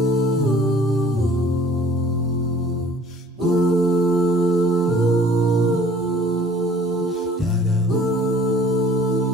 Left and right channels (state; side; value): normal; both; correlation 0.53